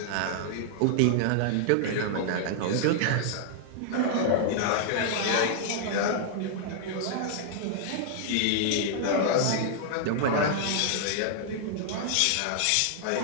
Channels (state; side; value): different; both; correlation -0.01